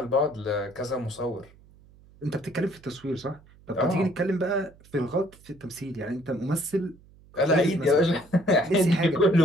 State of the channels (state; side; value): noise; right; hum, 26 dB below the sound